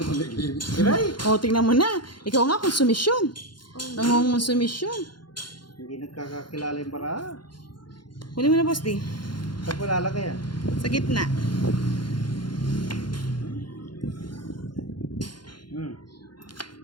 mag-game? Kiray! O, tingnan mo na. Ikaw nga, konsumisyon. Nangongonsumisyon. Hindi nagkakakilala yung bara. Kunin mo na, boss di. Saan ko lalagay yan? Sa gitna.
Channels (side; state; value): right; late; 0.71 ms